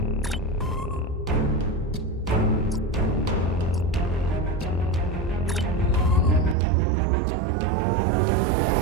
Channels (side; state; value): left; drops out; at 6.6 s